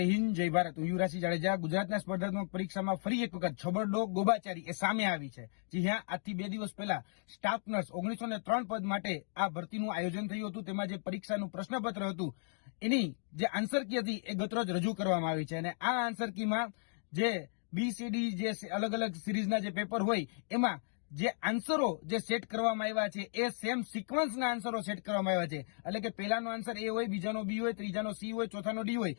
હિન્દ, જય ભારત. હું યુવરાજસિંહ જાડેજા. ગુજરાતના સ્પર્ધાત્મક પરીક્ષામાં ફરી એક વખત છબરડો ગોબાચારી એ સામે આવી છે. જી હા, આજથી 2 દિવસ પહેલા સ્ટાફ નર્સ 903 પદ માટે આ ભરતીનું આયોજન થયું હતું. તેમાં જે પરીક્ષાનું પ્રશ્નપત્ર હતું એની જે આન્સર કી હતી એ ગતરોજ રજૂ કરવામાં આવી છે અને આ આન્સર કીમાં જે BCD જે અલગ અલગ સિરીઝના જે પેપર હોય એમાં જે આન્સરો જે સેટ કરવામાં આવ્યા છે એ સેમ સિક્વન્સના આન્સરો સેટ કરવામાં આવ્યા છે. એટલે કે પહેલાનો આન્સર A હોય, બીજાનો B હોય, ત્રીજાનો C હોય, ચોથાનો D હોય,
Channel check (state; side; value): silent; right; 54 dB below the other